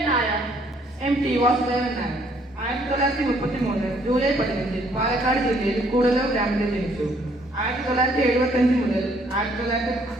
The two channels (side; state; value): both; normal; correlation 0.65